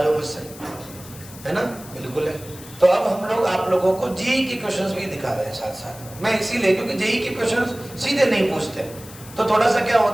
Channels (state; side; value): noise; left; hiss, 18 dB below the sound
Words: हो मुझसे, है ना, बिल्कुल है। तो अब हम लोग आप लोगों को जेई के क्वेश्चंस भी दिखा रहे हैं साथ साथ में। मैं इसीलिए, क्योंकि जेई के क्वेश्चंस सीधे नहीं पूछते, तो थोड़ा सा क्या